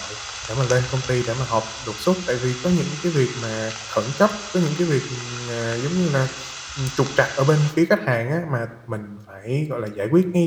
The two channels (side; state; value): both; identical; correlation 1.00